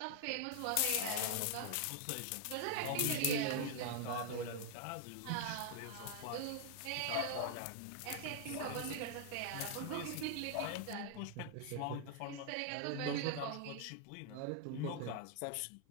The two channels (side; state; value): both; different; correlation 0.00